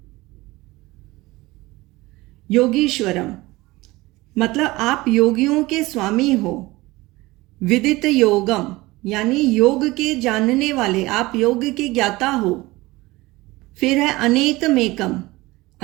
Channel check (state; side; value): quieter; left; 20.5 dB